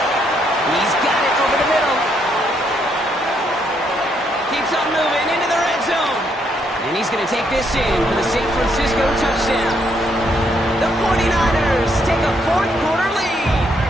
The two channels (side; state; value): both; normal; correlation 0.73